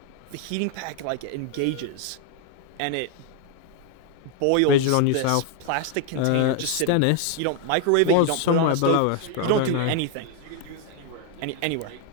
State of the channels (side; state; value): both; different; correlation 0.00